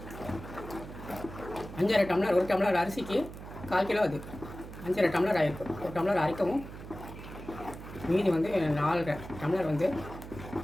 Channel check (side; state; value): right; noise; hum, 13 dB below the sound